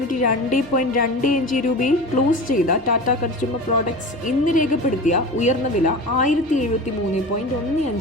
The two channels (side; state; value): both; normal; correlation 0.32